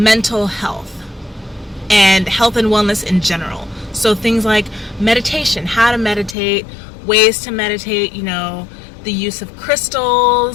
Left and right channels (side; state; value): right; drops out; at 6.4 s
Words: health and health and wellness in general. So things like meditation, how to meditate, ways to meditate, you know, the use of